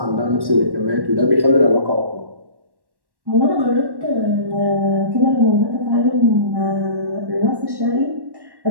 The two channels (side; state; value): left; late; 1.1 ms